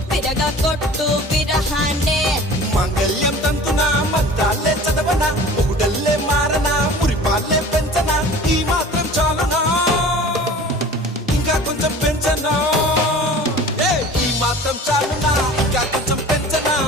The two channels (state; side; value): normal; both; correlation 0.42